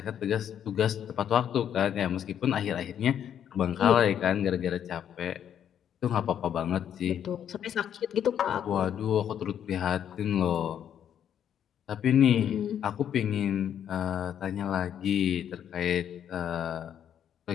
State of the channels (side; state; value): right; quieter; 9.4 dB